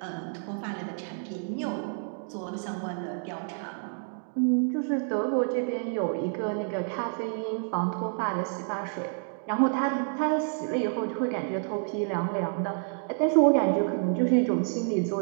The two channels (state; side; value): silent; left; 59 dB below the other